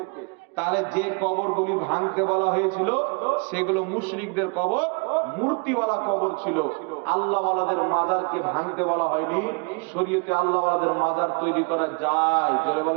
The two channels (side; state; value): left; quieter; 32.9 dB